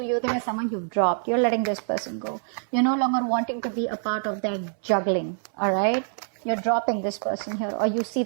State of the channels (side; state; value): left; silent; 61 dB below the other